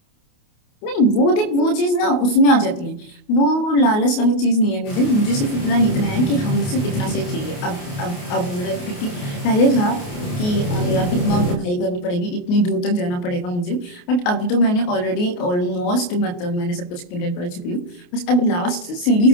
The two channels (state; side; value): late; right; 28 ms